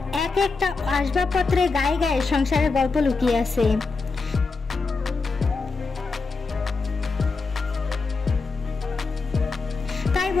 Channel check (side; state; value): right; quieter; 4.2 dB